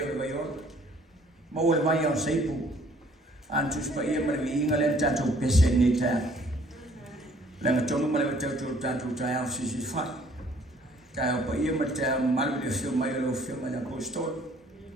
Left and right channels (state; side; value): normal; both; correlation 0.59